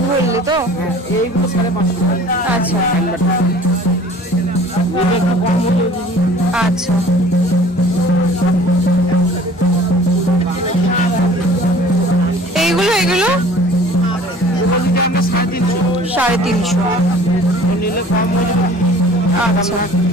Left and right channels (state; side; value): normal; both; correlation 0.48